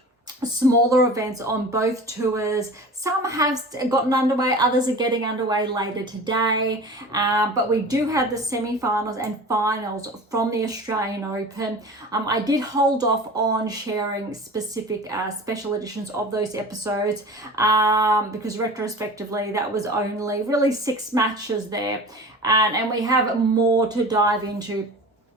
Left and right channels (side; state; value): both; normal; correlation 0.37